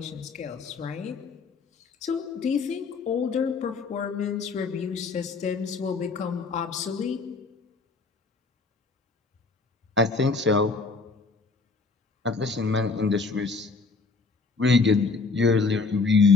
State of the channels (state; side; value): quieter; right; 4.2 dB